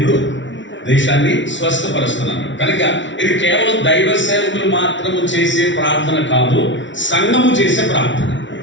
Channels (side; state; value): right; late; 0.55 ms